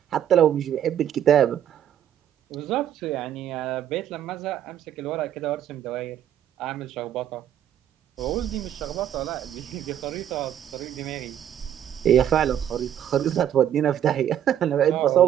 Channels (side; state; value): left; quieter; 10.3 dB